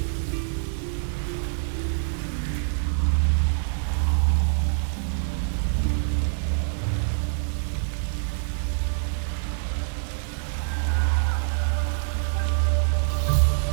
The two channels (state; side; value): silent; left; 61 dB below the other